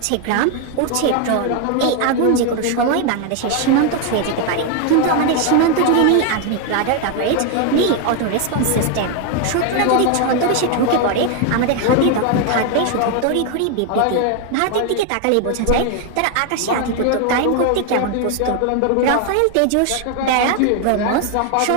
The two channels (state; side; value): different; both; correlation 0.01